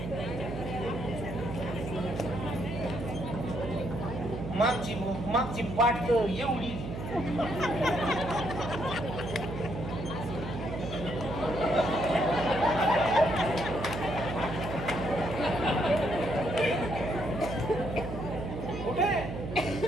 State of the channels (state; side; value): noise; right; hum, 7 dB below the sound